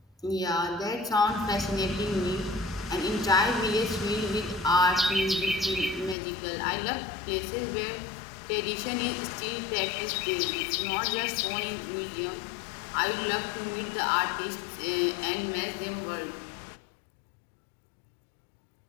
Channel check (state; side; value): drops out; right; at 6.2 s